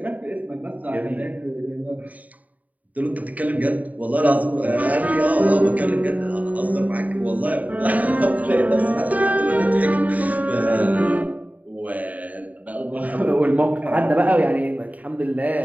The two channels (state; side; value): late; left; 0.073 ms